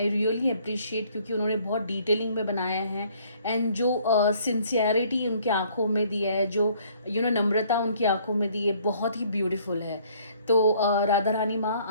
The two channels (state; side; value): inverted; both; correlation -0.60